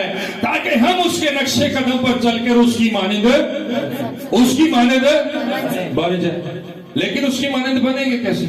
تاکہ ہم اس کے نقشے قدم پر چل کر اس کی مانند بن جائے. لیکن اس کی مانند بنیں گے کیسے؟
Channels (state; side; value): identical; both; correlation 1.00